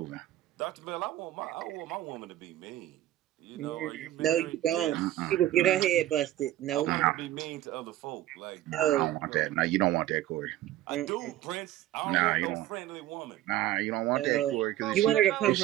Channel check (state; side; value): quieter; left; 14.0 dB